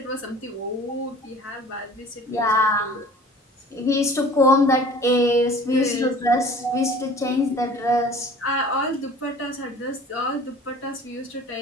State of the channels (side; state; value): both; normal; correlation 0.46